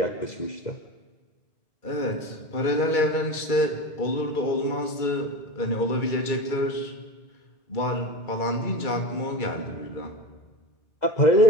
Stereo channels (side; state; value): right; late; 2.3 ms